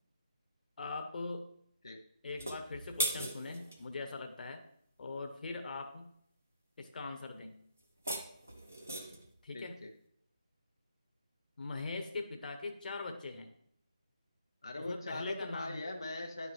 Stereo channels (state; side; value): inverted; both; correlation -0.67